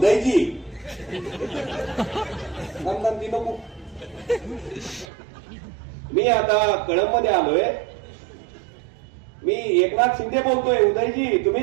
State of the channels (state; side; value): drops out; left; at 5.1 s